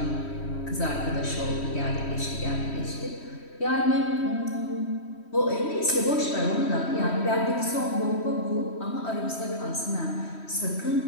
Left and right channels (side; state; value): right; late; 3.1 ms